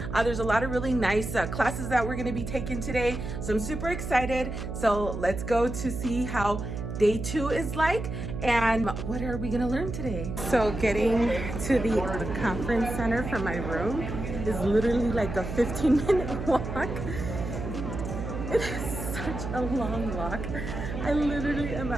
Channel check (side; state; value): right; noise; hum, 6 dB below the sound